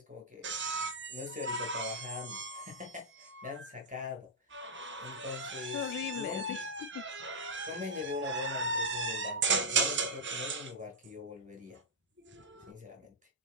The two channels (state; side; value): normal; both; correlation -0.07